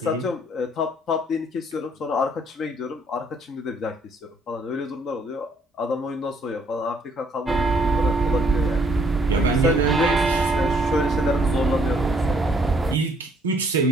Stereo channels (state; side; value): normal; both; correlation 0.66